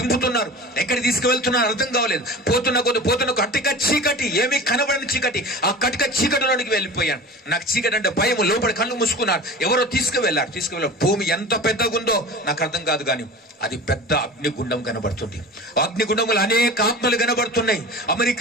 ఎక్కడికి తీసుకువెళ్తున్నారు అర్థం కావలేదు. పోతున్న కట్టిక చీకటి, ఏమీ కనబడని చీకటి, ఆ కట్టిక చీకటిలోనికి వెళ్ళిపోయాను. నాకు చీకటి అంటే భయం. లోపల కళ్ళు మూసుకున్నారు. ఎవరో తీసుకువెళ్ళారు. భూమి ఎంత పెద్దగా ఉందో నాకు అర్థం కాదు, కానీ అది పెద్ద అగ్నిగుండం కనబడుతుంది. అగ్నిగుండములు అనేక ఆత్మలు కనబడుతున్నాయి.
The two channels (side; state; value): both; normal; correlation 0.35